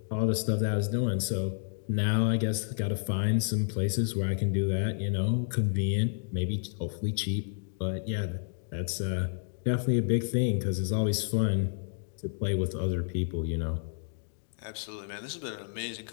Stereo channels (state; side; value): silent; right; digital silence